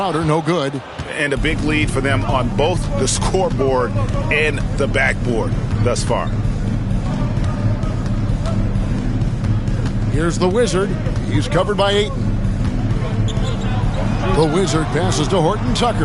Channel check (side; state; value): both; identical; correlation 1.00